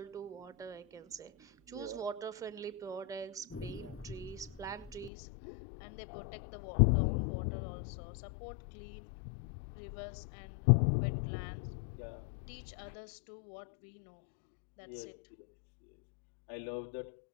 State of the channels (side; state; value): right; drops out; at 5.1 s